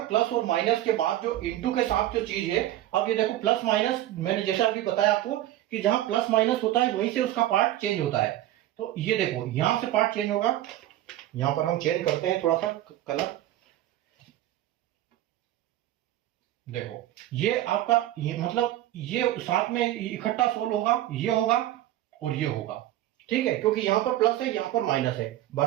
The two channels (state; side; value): quieter; left; 13.9 dB